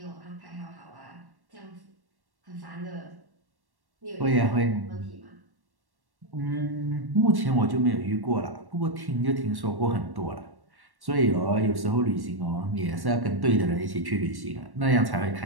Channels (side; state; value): left; late; 1.1 ms